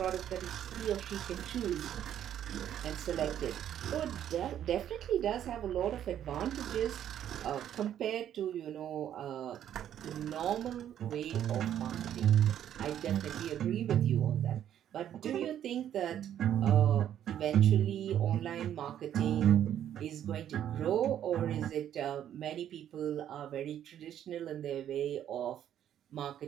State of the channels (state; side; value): quieter; left; 10.5 dB